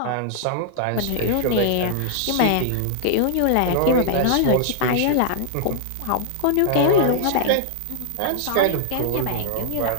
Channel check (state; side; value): different; both; correlation -0.01